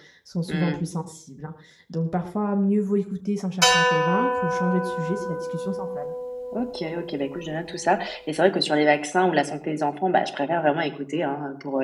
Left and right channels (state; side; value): identical; both; correlation 1.00